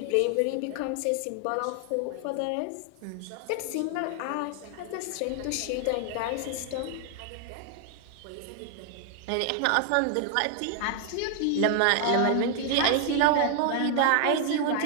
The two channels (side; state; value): both; different; correlation 0.00